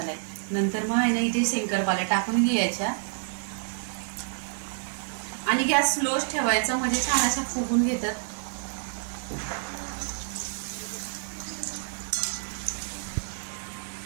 नंतर मग आहे ना इथे शंकरपाळ्या टाकून घ्यायच्या आणि गॅस स्लोच ठेवायचा म्हणजे छान अशा फुगून घेतात.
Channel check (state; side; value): silent; left; digital silence